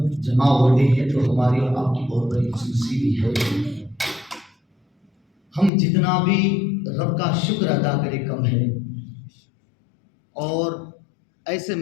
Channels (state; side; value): drops out; right; at 5.7 s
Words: جمع ہوتے ہیں تو ہماری اور آپ کی بہت بڑی خوش نصیبی ہے۔ ہم جتنا بھی رب کا شکر ادا کرے کم ہے، اور ایسے